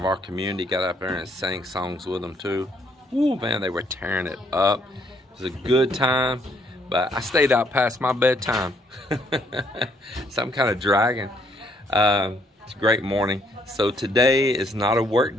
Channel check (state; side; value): normal; both; correlation 0.69